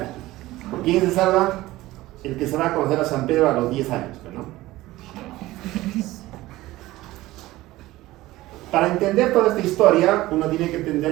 ¿Quién se salva? El que se va a conocer a San Pedro a los 10 años, ¿no? Para entender toda esta historia, uno tiene que entender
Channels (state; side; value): quieter; left; 17.5 dB